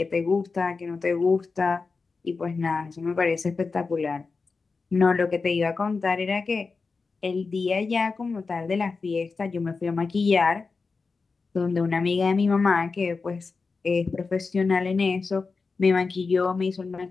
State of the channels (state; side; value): quieter; right; 4.4 dB